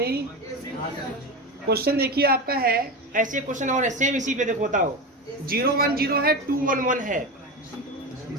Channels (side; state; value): both; normal; correlation 0.21